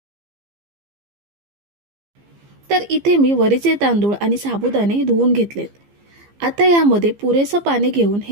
तर इथे मी वरीचे तांदूळ आणि साबुदाणे धुवून घेतलेत। आता यामध्ये पुरेसे पाणी घेऊन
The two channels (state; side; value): late; left; 15 ms